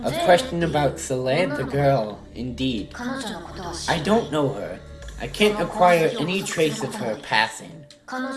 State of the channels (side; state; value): both; identical; correlation 1.00